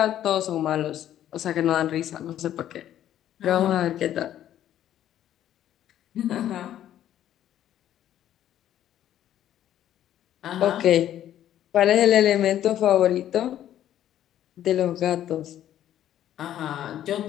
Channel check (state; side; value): quieter; right; 11.6 dB